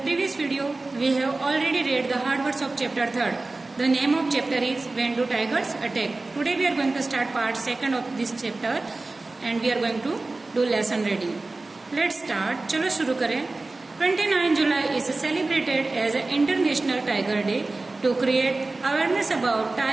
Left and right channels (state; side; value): quieter; left; 3.3 dB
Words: video, we have already read the hard words of chapter 3rd. The name of chapter is When Do Tigers Attack? Today we are going to start part 2nd of this chapter and we are going to do lesson reading. Let's start. चलो शुरू करें. 29 July is celebrated as an International Tiger Day to create awareness about